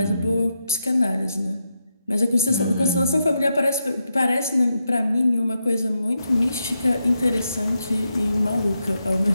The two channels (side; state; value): both; inverted; correlation -0.85